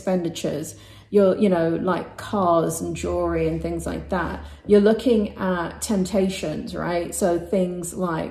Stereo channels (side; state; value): both; identical; correlation 1.00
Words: You know, like cars and jewelry and things like that. You're looking at temptations, right? So things